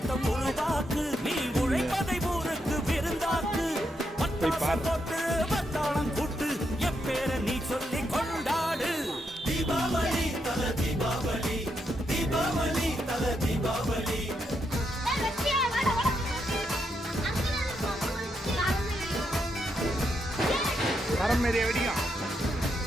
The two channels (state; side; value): normal; both; correlation 0.81